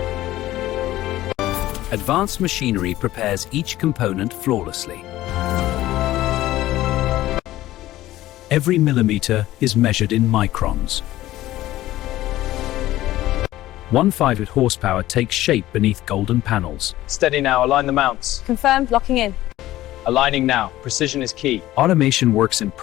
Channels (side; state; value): right; quieter; 15.4 dB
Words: Advanced machinery prepares each component flawlessly. Every millimeter is measured in microns. 1/5 horsepower takes shape beneath golden panels. Steady now, align the mounts. Confirmed. Locking in. Aligning now, precision is key. Automation works in